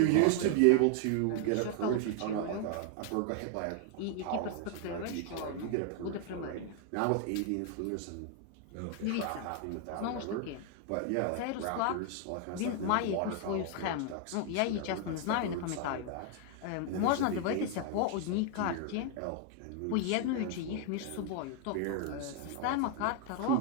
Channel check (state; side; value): different; both; correlation 0.00